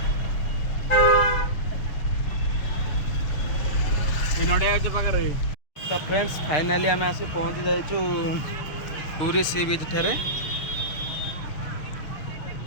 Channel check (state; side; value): late; right; 6.5 ms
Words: ଏ ନଡ଼ିଆ ଗଛ ପାଖରେ तो फ्रेंड्स फाइनाली आम आसी पहुँची जाइचु पूरी सी बीच ठारे